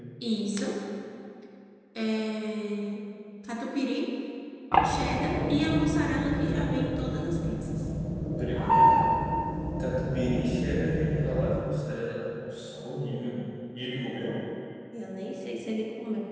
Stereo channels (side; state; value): both; identical; correlation 1.00